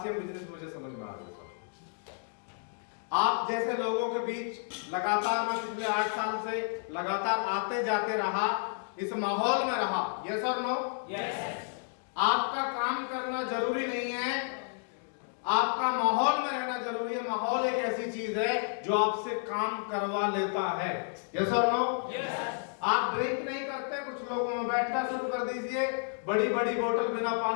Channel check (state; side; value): silent; right; 57 dB below the other